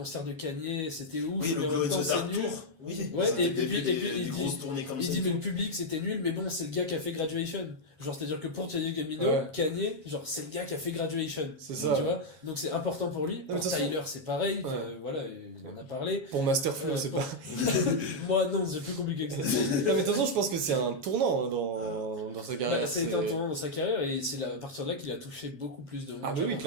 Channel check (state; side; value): late; left; 7.3 ms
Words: de Kanye, c'était ouf, Oui, mais le en même Glow in temps, the c'est Dark nul. Tour. Oui. Ouais, Ça et avait puis des il dit- grosses tournées comme Il ça. dit, et mais tout. le public, c'était nul, mais bon, c'est le gars qui a fait Graduation. Genre, c'est-à-dire que pour Childish Gambino, Ouais. Kanye, genre, c'est le gars qui a fait Graduation. C'est ça. Tu vois? Donc, c'est important pour lui. mais Pour de toute façon- Tyler, c'est pareil. Ouais. Voilà, il en a parlé. Pour Masterflow, c'est pour- pas. Moi, non, c'est plus compliqué que ça. Non, mais de toute façon, je pense que c'est un tournant hein, dans sa carrière. Bah, ça a été un tournant dans sa carrière et c'est à partir de là qu'il a touché beaucoup plus de monde. Ah, bah oui,